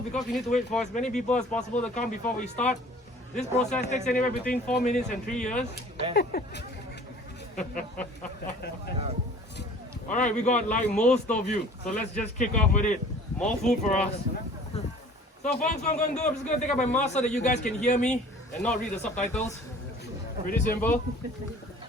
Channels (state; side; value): normal; both; correlation 0.48